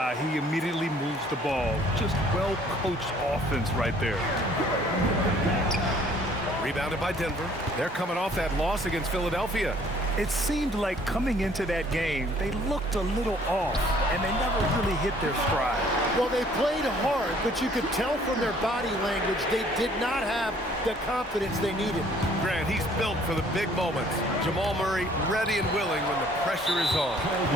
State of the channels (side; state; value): both; normal; correlation 0.58